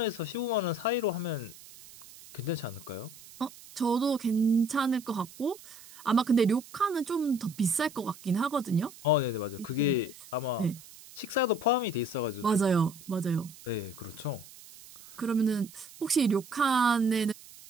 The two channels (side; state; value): right; noise; hiss, 19 dB below the sound